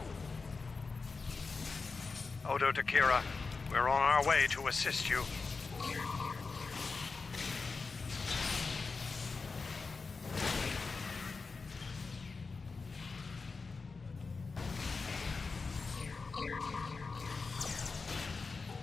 Odo Takira, we're on our way to assist you.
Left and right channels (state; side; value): quieter; right; 4.4 dB